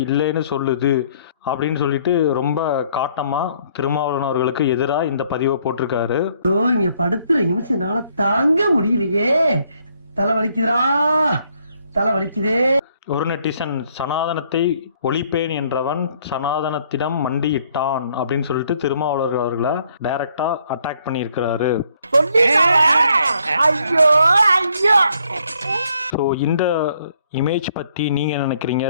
இல்லைன்னு சொல்லுது அப்படின்னு சொல்லிட்டு ரொம்ப காட்டமாக திருமாவளவன் அவர்களுக்கு எதிராக இந்த பதிவை போட்டிருக்காரு. இங்க படுத்துற நிமிஷம்னால தாங்க முடியலையே, தலை வலிக்குதுரா, தலை வலிக்குதே. ஒரு நெட்டிசன் சனாதனத்தை ஒழிப்பேன் என்றவன் சனாதனத்திடம் மண்டியிட்டான் அப்படின்னு சொல்லிட்டு திருமாவளவன் அவர்களை டைரக்டா அட்டாக் பண்ணியிருக்கிறாரு. ஸோ இந்த இமேஜ் பற்றி நீங்கள் நினைக்கிறீங்க?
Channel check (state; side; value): inverted; both; correlation -0.67